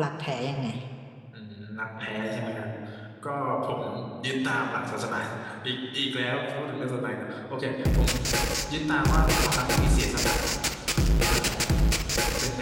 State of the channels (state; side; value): identical; both; correlation 1.00